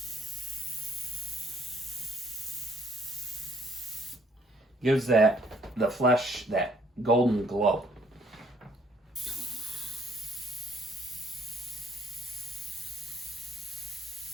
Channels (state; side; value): normal; both; correlation 0.65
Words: Gives the flesh that golden glow.